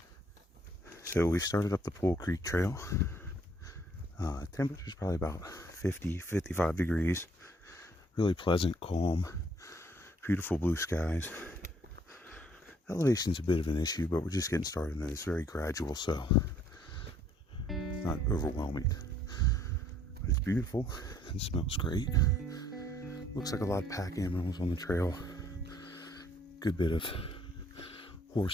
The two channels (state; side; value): normal; both; correlation 0.63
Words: So we started up the Pole Creek Trail. Temperature's probably about 50, 55 degrees. Really pleasant, calm, beautiful blue skies. Elevation's a bit of an issue, but we're just getting started, and it's very gradual, so it's not overwhelming. But it's beautiful and smells great. Looks like a lot of pack animals on the trail. Good bit of